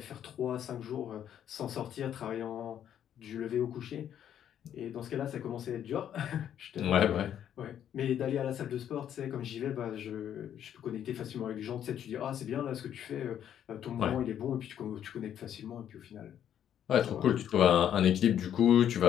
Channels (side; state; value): right; quieter; 10.0 dB